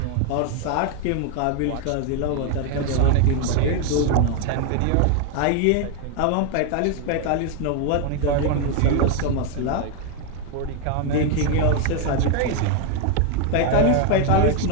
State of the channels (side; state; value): both; different; correlation 0.01